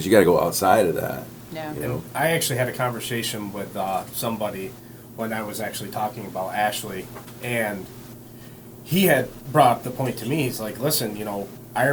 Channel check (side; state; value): both; identical; correlation 1.00